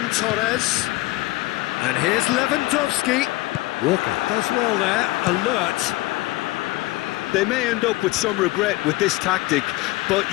Torres. And here's Lewandowski. Walker does well there, alert. They may end up with some regret with this tactic, but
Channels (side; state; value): right; quieter; 20.1 dB